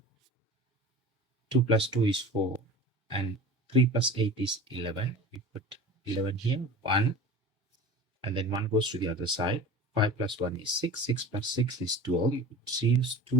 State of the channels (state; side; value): normal; both; correlation 0.37